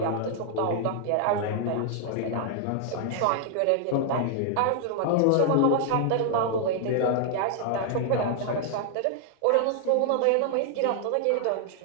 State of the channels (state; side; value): different; both; correlation -0.01